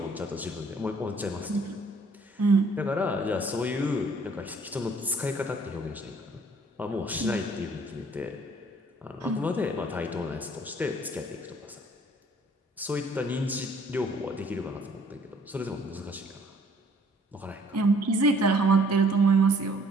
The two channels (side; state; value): both; normal; correlation 0.59